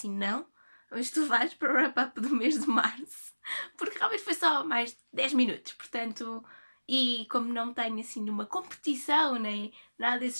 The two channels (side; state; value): both; inverted; correlation -1.00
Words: não, mas tu vais para o wrap-up do mês de março, porque realmente foi só mais 10 minutos, portanto... E como não tenho assim nenhuma competição, nem nada desse